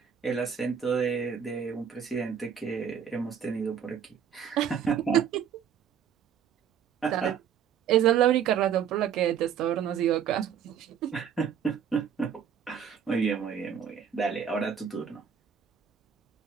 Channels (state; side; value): quieter; left; 8.1 dB